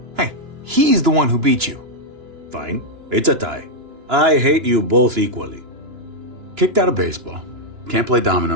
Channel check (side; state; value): left; late; 2.9 ms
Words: Hey, he's the one who beat you. Fine, it's a tie. I hate you both equally. Kicked out of baseball. Can't play